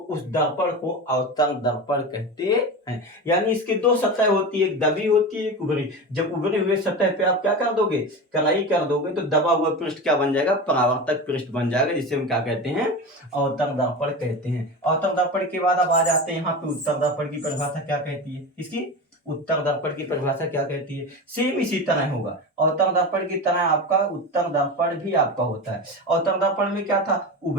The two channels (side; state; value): both; normal; correlation 0.25